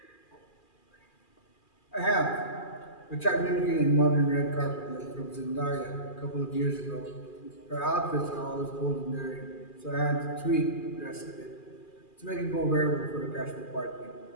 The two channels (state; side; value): late; right; 2.4 ms